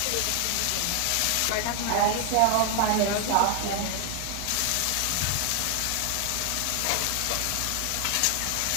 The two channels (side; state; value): both; different; correlation 0.00